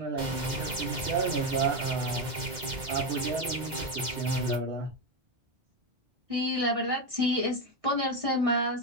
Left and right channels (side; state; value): left; late; 2.0 ms